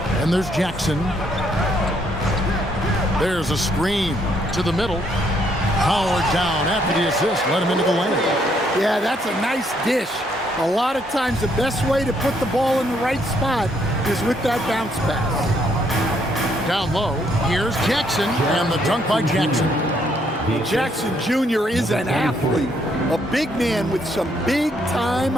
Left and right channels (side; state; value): both; normal; correlation 0.71